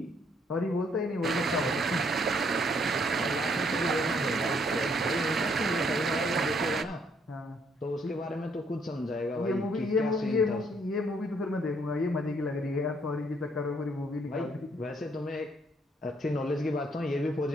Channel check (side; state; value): both; normal; correlation 0.68